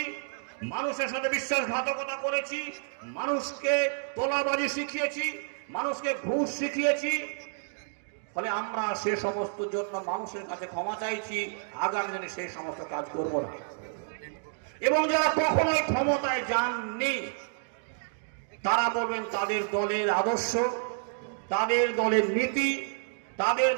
মানুষের সাথে বিশ্বাসঘাতকতা করেছি, মানুষকে তোলাবাজি শিখিয়েছি, মানুষকে ঘুষ শিখিয়েছি, ফলে আমরা সে সমস্ত জন্য মানুষের কাছে ক্ষমা চাইছি, আগামী দিনে সেই সমস্ত কাজ করব না। এবং যারা কখনোই ক্ষমতায় যাননি, তারা বলবেন তাদের দলের আদর্শ, তাদের দলের নীতি, তাদের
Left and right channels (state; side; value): silent; left; digital silence